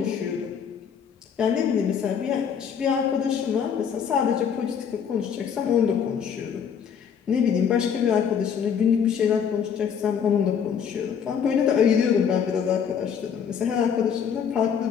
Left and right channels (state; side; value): quieter; right; 7.5 dB